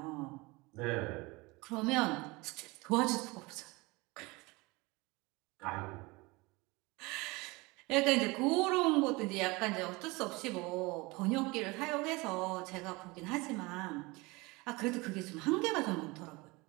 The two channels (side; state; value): left; quieter; 24.1 dB